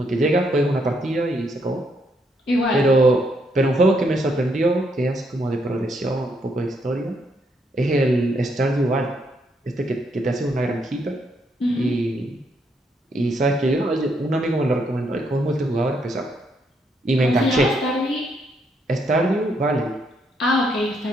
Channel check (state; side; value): normal; both; correlation 0.75